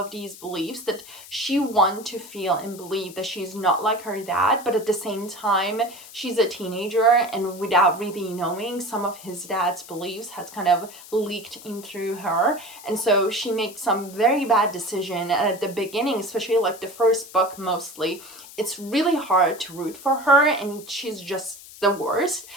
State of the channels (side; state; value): left; noise; hiss, 17 dB below the sound